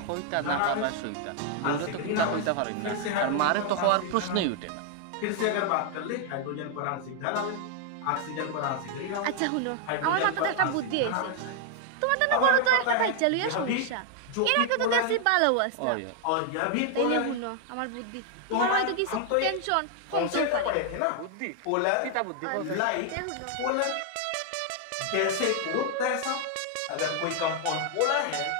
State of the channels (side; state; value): both; different; correlation 0.00